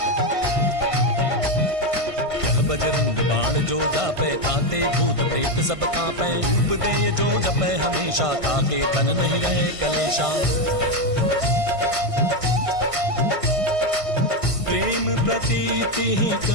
यह बजरंग बाण जो जापे ताते भूत प्रेत सब कांपे धूप दे जो जपे हमेशा ताके तन नहीं रहे कलेशा प्रेम प्रतीति ही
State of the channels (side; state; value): left; late; 1.5 ms